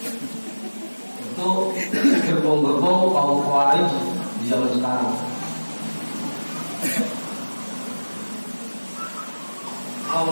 Itu gerbong-gerbong kaum Khawarij di zaman sekarang.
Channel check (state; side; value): inverted; both; correlation -1.00